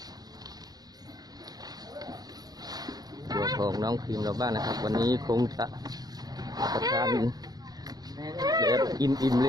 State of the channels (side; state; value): left; late; 0.19 ms